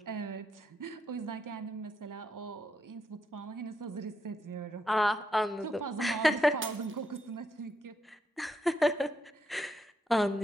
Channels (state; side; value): normal; both; correlation 0.80